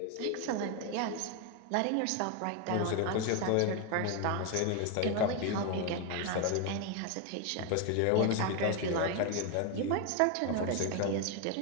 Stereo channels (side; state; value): both; different; correlation 0.01